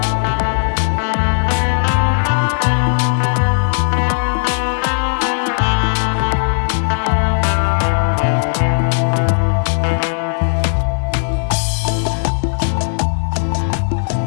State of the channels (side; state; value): right; silent; 56 dB below the other